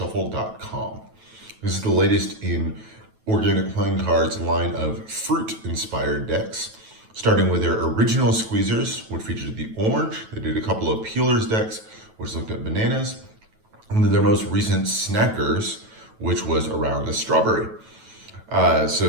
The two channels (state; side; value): late; left; 9.2 ms